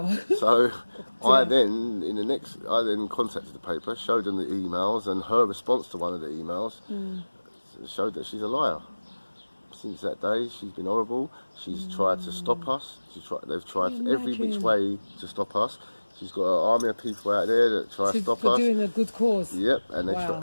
So I then contacted the paper, showed them the emails, and her response to one of the emails showed that she's a liar. Since that day, she's been horrible. She's tried to stop us. They've tried every which way to stop us. She's got an army of people out there that try to stop us. For doing a good cause. Yep,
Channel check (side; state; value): both; inverted; correlation -1.00